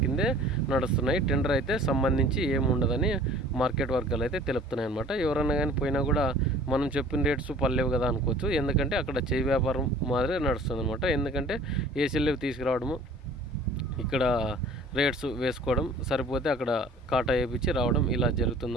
కిందే నడుస్తున్నాయి, టెండర్ అయితే సంబంధించి ఏముండదని మార్కెట్ వర్గాలు అయితే తెలుపుతున్నాయి అనమాట. ఎవరన్నా కానీ పోయినా కూడా మనం చెప్పిన రేట్స్ పర్లేవు కదా అనుకోవచ్చు. ఎందుకంటే అక్కడ చేయి వ్యాపారం మాదిరి నడుస్తుంది అనమాట. ఎందుకంటే ఏసీలు తీసుకురావడము, ఇక్కడ రేట్స్ వేసుకోవడం, సరిపోతే అక్కడ కాటా వేయించి రావడం, ఇలా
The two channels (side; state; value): both; normal; correlation 0.48